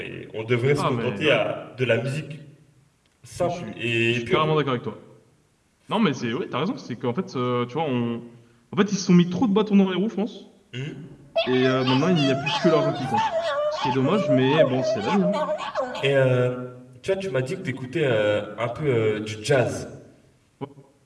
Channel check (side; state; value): both; identical; correlation 1.00